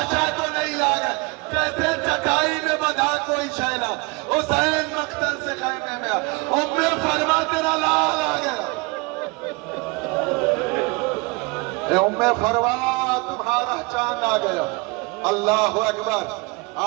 تو نہیں لاگا، جیسے چٹائی میں بندھا کوئی شینا۔ حسین مقتل سے خیمے میں ام فرما تیرا لال آ گیا، ام فروا تمہارا چاند آ گیا۔ اللہ اکبر۔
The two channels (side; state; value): left; quieter; 27.3 dB